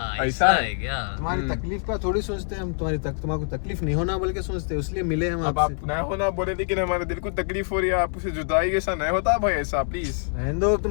ऐसा है क्या तुम्हारी तकलीफ का थोड़ी सोचते हैं हम, तुम्हारी तकलीफ नहीं होना बोल के सोचते हैं, इसलिए मिले हम अब आपसे। आप ना होना बोले लेकिन हमारे दिल को तकलीफ हो रही है, आपसे जुदाई कैसा नहीं होता भाई ऐसा प्लीज। दो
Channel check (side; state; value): right; silent; digital silence